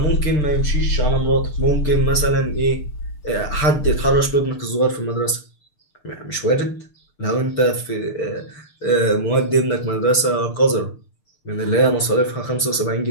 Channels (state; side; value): late; right; 6.7 ms